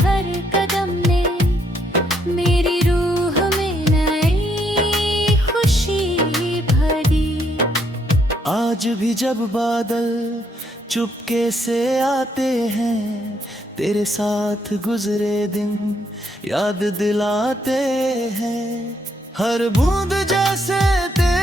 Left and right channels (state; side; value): normal; both; correlation 0.72